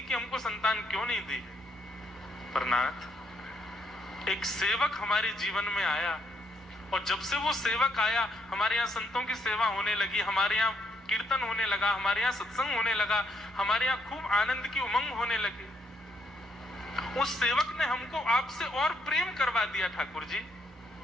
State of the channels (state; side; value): normal; both; correlation 0.74